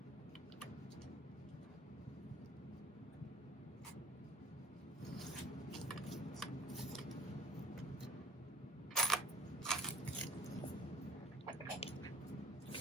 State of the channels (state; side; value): normal; both; correlation 0.51